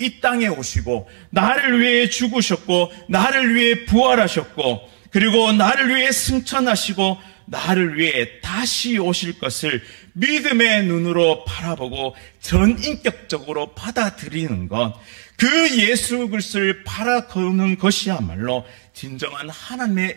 땅에 오시고 나를 위해 죽으셨고 나를 위해 부활하셨고 그리고 나를 위해 승천하시고 나를 위해 다시 오실 것을 믿음의 눈으로 바라보고 전인격적으로 받아들이는 것, 그 예수 그리스도를 바라보는 것이야말로 진정한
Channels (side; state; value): left; silent; digital silence